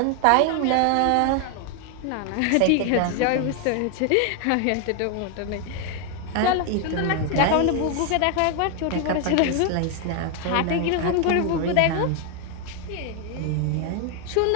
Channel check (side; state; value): both; different; correlation 0.00